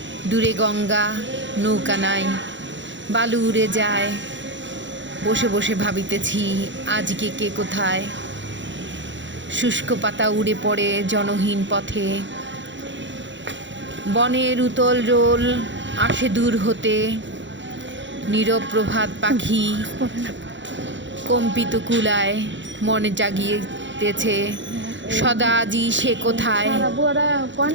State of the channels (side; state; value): left; late; 0.54 ms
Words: দূরে গঙ্গা, নৌকা নাই, বালু উড়ে যায়। বসে বসে ভাবিতেছি আজকে কে কোথায়। শুষ্ক পাতা উড়ে পড়ে জনহীন পথে, বনের উতল রোল আসে দূর হতে। নীরব প্রভাত পাখি কম্পিত কুলায়, মনে জাগিয়েতেছে সদা আজি সে কোথায়।